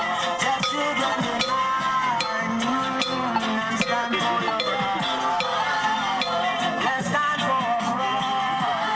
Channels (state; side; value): noise; left; rumble, 28 dB below the sound